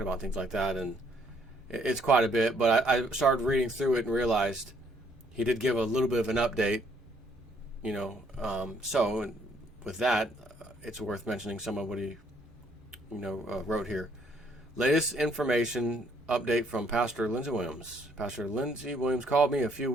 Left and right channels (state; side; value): normal; both; correlation 0.67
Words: about, things like that, and it's quite a bit. But I started reading through it and realized he did give a little bit of an update, so with that, it's worth mentioning some of what he, wrote here. Latest information update from Pastor Lindsey Williams. Pastor Lindsey Williams called me a few